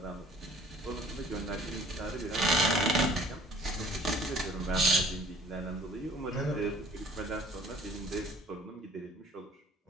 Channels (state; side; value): normal; both; correlation 0.53